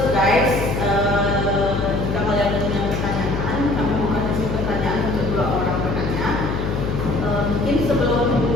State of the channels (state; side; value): noise; left; hum, 2 dB below the sound